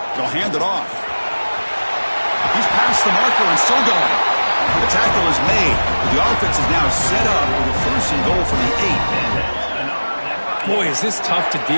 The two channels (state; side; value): inverted; both; correlation -1.00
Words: They'll hand it off. Gets the marker and still going. The tackle is made. The offense is now set up with a 1st and goal from the 8. Boy, is this tough to